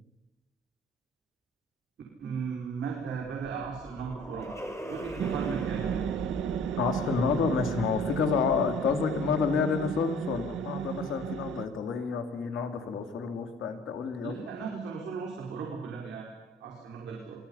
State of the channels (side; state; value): both; normal; correlation 0.50